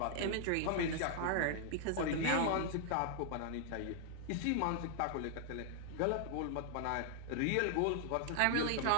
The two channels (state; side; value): different; both; correlation 0.00